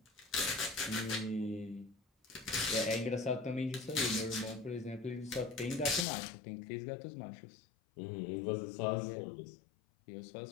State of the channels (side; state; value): right; drops out; at 6.1 s